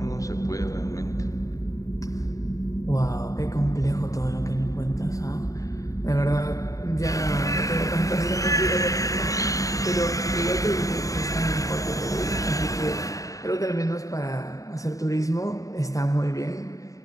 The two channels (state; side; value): late; right; 0.16 ms